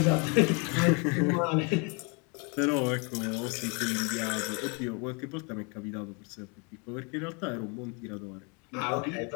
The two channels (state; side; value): quieter; right; 33.2 dB